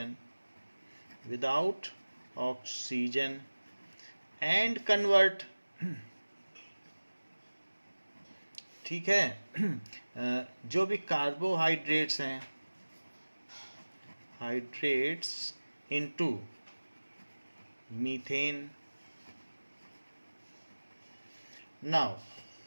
without oxygen and convert, ठीक है, जो भी कार्बोहाइड्रेट्स हैं, hydrates into methane. Now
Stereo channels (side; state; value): both; inverted; correlation -1.00